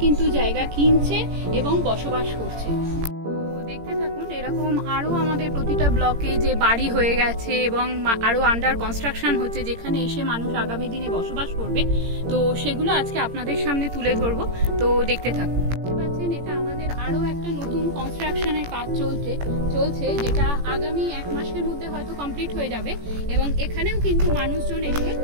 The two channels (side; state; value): left; late; 18 ms